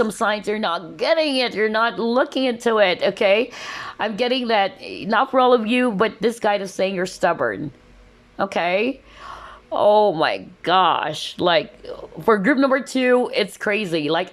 signs. You're not getting it. You're not looking into it. Okay. I'm getting that, not for all of you, but this guide is saying you're stubborn. Okay. Oh my gosh. Like for group number 2, it's crazy. Like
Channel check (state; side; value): identical; both; correlation 1.00